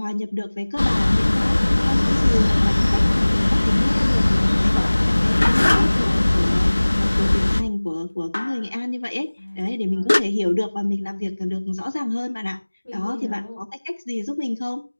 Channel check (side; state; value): both; inverted; correlation -1.00